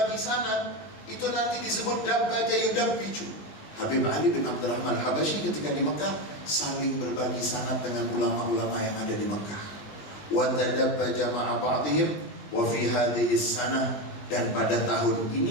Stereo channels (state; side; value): late; right; 20 ms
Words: sanad, itu nanti disebut dabbaja yudabbiju. Habib Ali bin Abdurrahman Habasyi ketika di Mekah saling berbagi sanad dengan ulama-ulama yang ada di Mekah. Wa tadabbaja ma'a ba'dihim wa fi hadhihi sanah, dan pada tahun